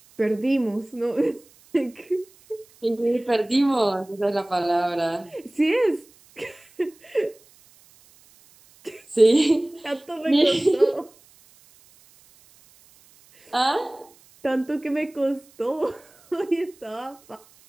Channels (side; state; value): right; noise; hiss, 28 dB below the sound